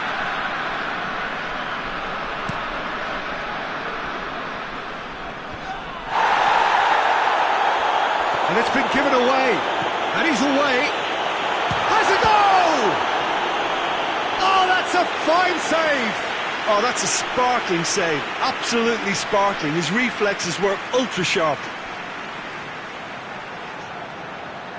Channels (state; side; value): identical; both; correlation 1.00